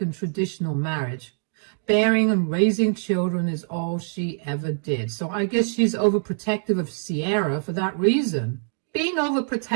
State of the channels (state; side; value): silent; left; digital silence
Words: and traditional marriage. Bearing and raising children is all she ever did. So I guess she's overprotective of Sierra for that reason. Being